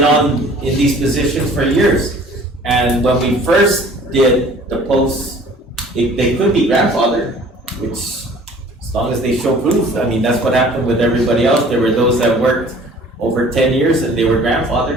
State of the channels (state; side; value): normal; both; correlation 0.50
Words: in these positions for years. And when we first did the posts, they could be grandfathered, which as long as they show proof, I mean, that's what happened with everybody else. There were those that worked over 10 years and they were